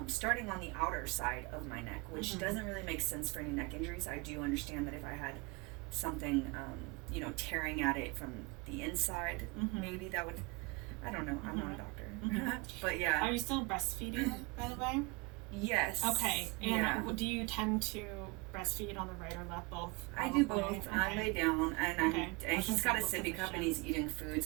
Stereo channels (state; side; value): quieter; left; 26.4 dB